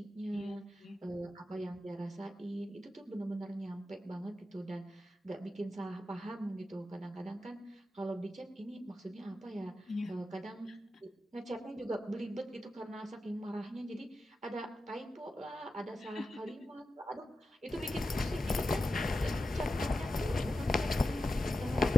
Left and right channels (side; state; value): both; normal; correlation 0.91